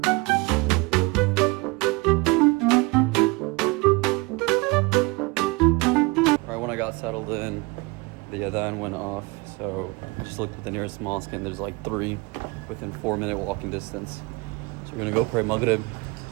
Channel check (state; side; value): quieter; left; 25.6 dB